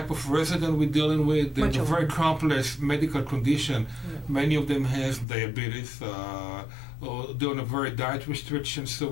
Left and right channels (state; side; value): drops out; right; at 5.2 s